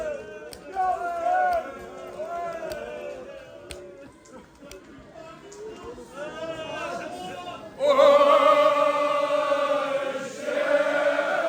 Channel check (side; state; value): both; identical; correlation 1.00